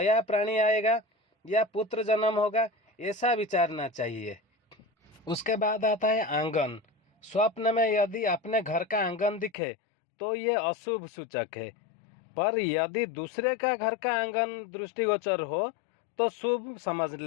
प्राणी आएगा या पुत्र जन्म होगा, ऐसा विचारना चाहिए। उसके बाद आता है आंगन। स्वप्न में यदि अपने घर का आंगन दिखे तो ये अशुभ सूचक है, पर यदि दूसरे का घर का आंगन दृष्टिगोचर हो तो शुभ समझ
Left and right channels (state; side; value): drops out; right; at 9.5 s